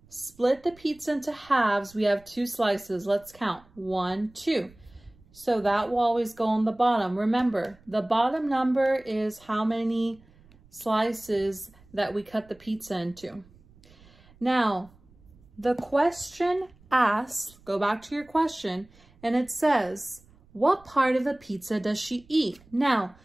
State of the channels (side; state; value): right; noise; rumble, 27 dB below the sound